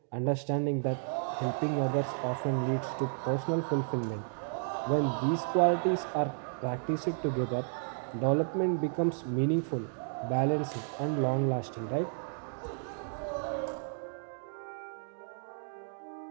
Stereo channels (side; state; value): left; silent; digital silence